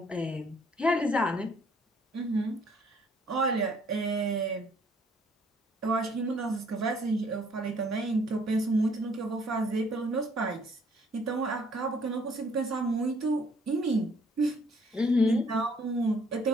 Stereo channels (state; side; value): normal; both; correlation 0.62